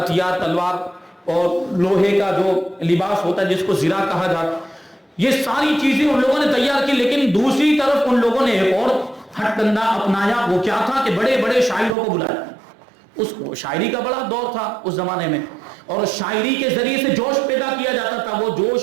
تلوار اور لوہے کا جو لباس ہوتا ہے جس کو زرہ کہا جاتا, یہ ساری چیزیں ان لوگوں نے تیار کی. لیکن دوسری طرف ان لوگوں نے ایک اور ہٹ کنڈا اپنایا. وہ کیا تھا کہ بڑے بڑے شاعروں کو بلایا. اس شاعری کا بڑا دور تھا اس زمانے میں, اور شاعری کے ذریعے سے جوش پیدا کیا جاتا تھا. وہ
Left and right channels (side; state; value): left; drops out; at 12.0 s